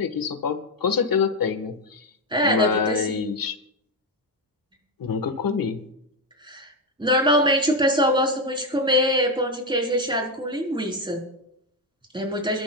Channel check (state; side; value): normal; both; correlation 0.08